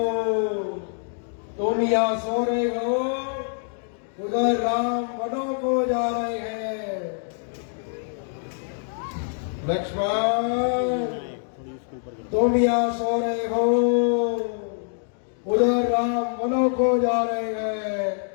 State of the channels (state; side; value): silent; right; digital silence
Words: तुम यहाँ सो रहे हो उधर राम वनों को जा रहे हैं। लक्ष्मण, तुम यहाँ सो रहे हो, उधर राम वनों को जा रहे हैं।